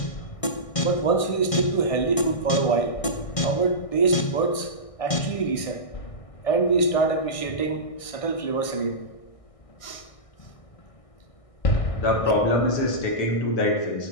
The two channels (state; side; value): late; right; 1.6 ms